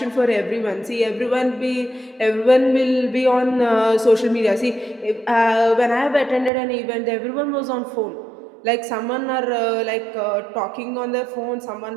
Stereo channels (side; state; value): left; drops out; at 6.5 s